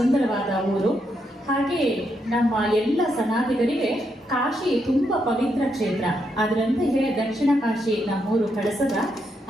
ಊರು. ಹಾಗೆ ನಮ್ಮ ಎಲ್ಲ ಸನಾತಿಗರಿಗೆ ಕಾಶಿ ತುಂಬ ಪವಿತ್ರ ಕ್ಷೇತ್ರ. ಅದರಂತೆಯೇ ದಕ್ಷಿಣ ಕಾಶಿ ನಮ್ಮೂರು ಕಳಸದ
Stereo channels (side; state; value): both; normal; correlation 0.80